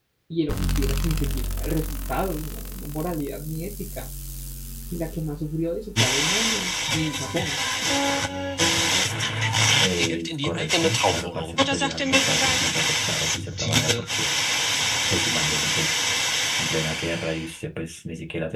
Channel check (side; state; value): both; identical; correlation 1.00